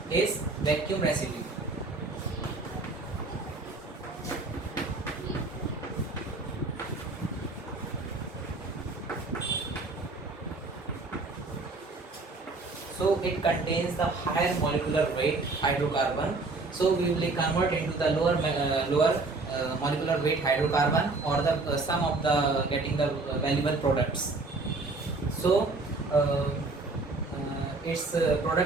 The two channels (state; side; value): quieter; left; 3.5 dB